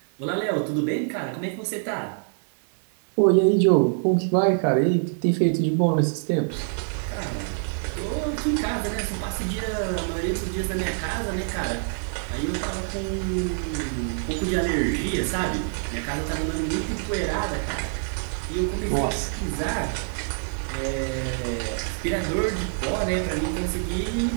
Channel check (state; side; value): silent; left; 61 dB below the other